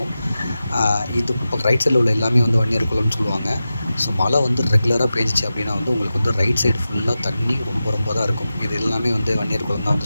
இது இப்போ ரைட் சைடில் உள்ள எல்லாமே வந்து வன்னியர் குளம்னு சொல்லுவாங்க. ஸோ மழை வந்து ரெகுலராக பேஞ்சிச்சு அப்படின்னா வந்து உங்களுக்கு வந்து ரைட் சைடு ஃபுல்லாக தண்ணி ரொம்ப ரொம்ப தான் இருக்கும். இது எல்லாமே வந்து வன்னியர் குளம் தான்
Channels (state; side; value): inverted; both; correlation -0.93